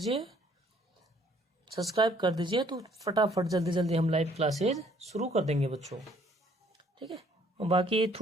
कर दीजिए तो फटाफट जल्दी जल्दी हम लाइव क्लासेज शुरू कर देंगे बच्चों। ठीक है, और बाकी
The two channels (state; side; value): normal; both; correlation 0.62